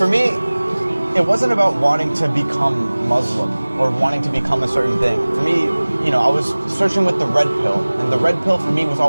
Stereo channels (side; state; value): both; inverted; correlation -1.00